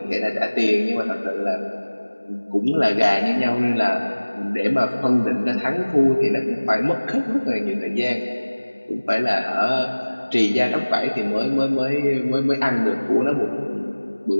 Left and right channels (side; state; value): both; inverted; correlation -1.00